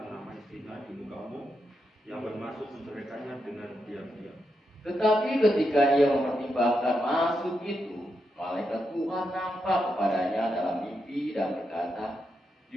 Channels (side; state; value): both; normal; correlation 0.84